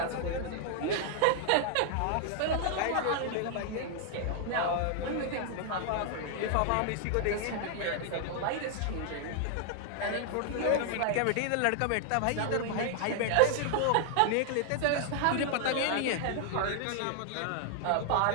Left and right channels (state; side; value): different; both; correlation 0.00